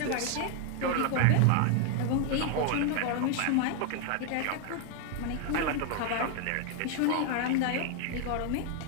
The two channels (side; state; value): both; different; correlation 0.00